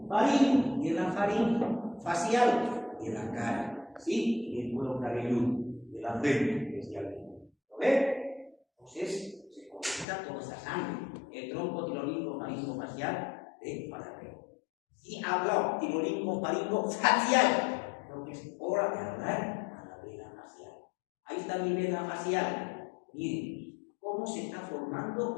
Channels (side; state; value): right; drops out; at 10.1 s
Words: Faringo, de la faringe. Facial, de la cara. ¿Sí? Y el cuero cabelludo, de la frente, especialmente. ¿Lo ve? Entonces, se conecta toda esa sangre. El tronco tirolingo faringo facial de Farapeo. Y habla tirolingo faringo facial. Creo que es hora de hablar a la vena facial. Ahí está mi vena facial. Miren, cómo se está